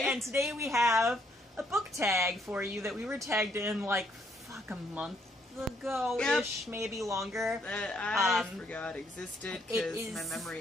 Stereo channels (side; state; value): both; normal; correlation 0.70